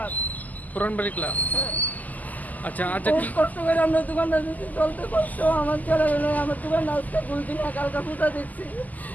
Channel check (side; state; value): right; late; 0.080 ms